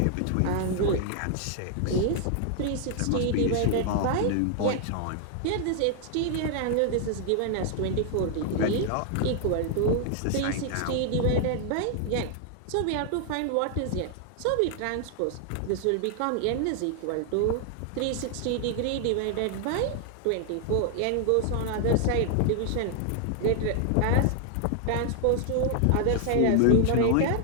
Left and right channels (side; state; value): both; different; correlation 0.00